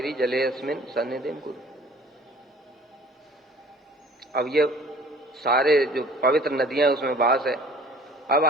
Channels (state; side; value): normal; both; correlation 0.50